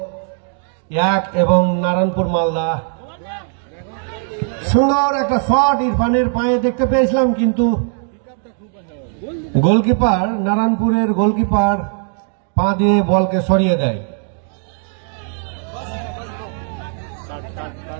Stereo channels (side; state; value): left; silent; 56 dB below the other